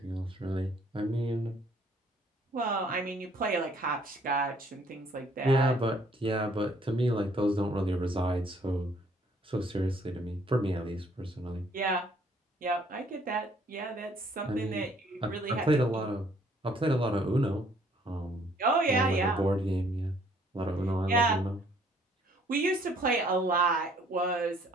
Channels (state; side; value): normal; both; correlation 0.62